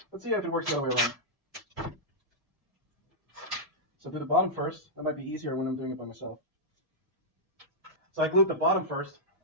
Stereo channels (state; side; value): late; left; 1.7 ms